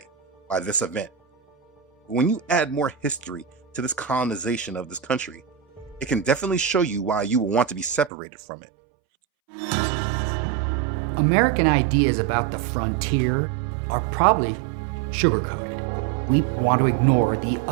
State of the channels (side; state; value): left; drops out; at 8.1 s